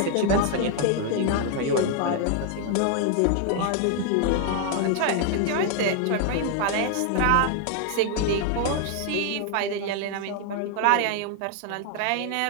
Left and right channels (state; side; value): different; both; correlation 0.00